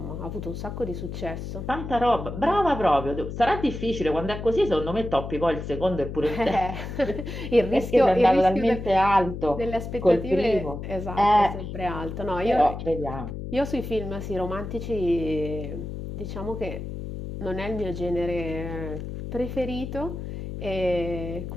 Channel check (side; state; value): left; noise; hum, 7 dB below the sound